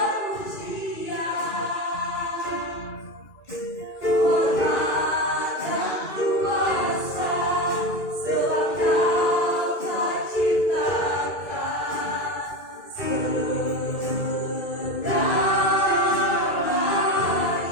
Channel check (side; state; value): right; late; 2.4 ms